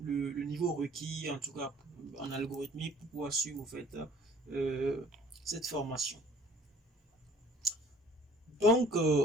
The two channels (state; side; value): normal; both; correlation 0.54